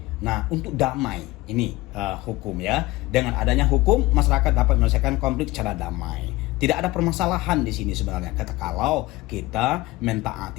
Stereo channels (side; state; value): right; quieter; 19.6 dB